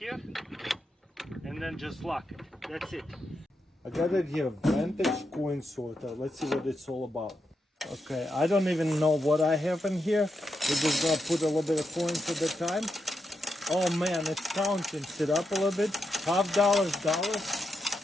and then just lock it. That's it. I got it here, Vantage coin sorter. Let's see what it's all about. Okay, I don't even know what I have in here. We're just gonna put a little bit of coins at a time. Oh man, it's counting. Sit up a little bit. $50, dollars.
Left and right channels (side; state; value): both; normal; correlation 0.84